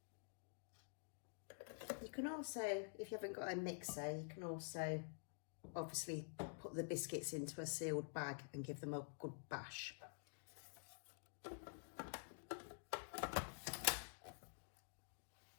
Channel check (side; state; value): right; silent; digital silence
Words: You can also, if you haven't got a mixer, you can also obviously put the biscuits into a sealed bag and give them a good bash.